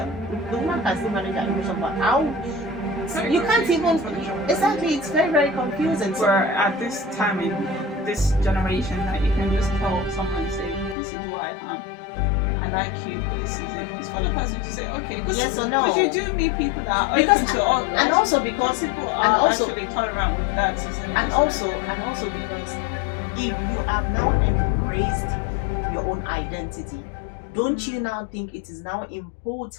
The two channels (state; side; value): drops out; right; at 11.0 s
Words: The woman can still manage her emotion, but how? You can't even. Exactly, it's very, very confusing. So, Where at this time in this generation, that you can just tell someone, say, this is who I am. I like you. This is it. It's for the person to say, okay. Yes or no? Because you do meet people that are because open to all, and also because people are and also actually tolerant with that. and also because if you have now embraced your own identity, don't you now think it is now